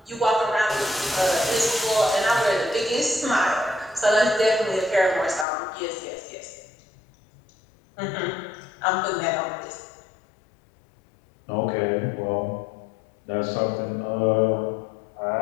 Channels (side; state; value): right; drops out; at 5.5 s